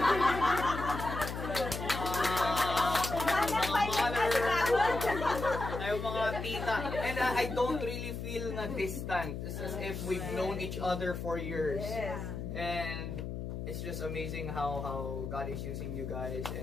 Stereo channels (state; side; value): noise; left; hum, 5 dB below the sound